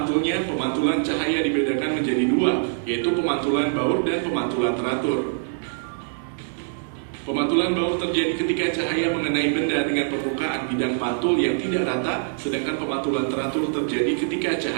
pemantulan cahaya dibedakan menjadi dua, yaitu pemantulan baur dan pemantulan teratur. Pemantulan baur terjadi ketika cahaya mengenai benda dengan permukaan bidang pantul yang tidak rata, sedangkan pemantulan teratur terjadi ketika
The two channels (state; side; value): silent; left; digital silence